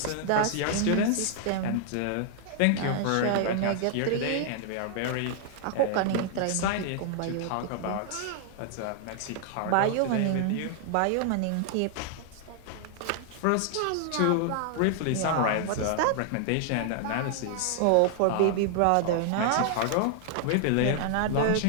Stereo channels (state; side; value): different; both; correlation 0.00